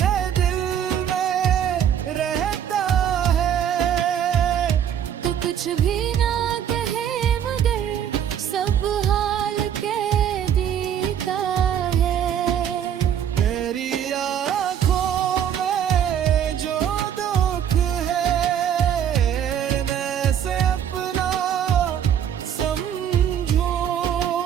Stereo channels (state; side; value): quieter; left; 9.3 dB